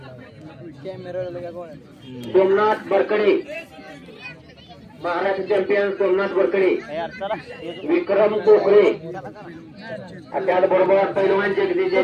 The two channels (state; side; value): identical; both; correlation 1.00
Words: सोमनाथ बरकडे महाराष्ट्र चॅम्पियन सोमनाथ बरकडे, विक्रम कोकरे, त्याचबरोबर पैलवान जगदीश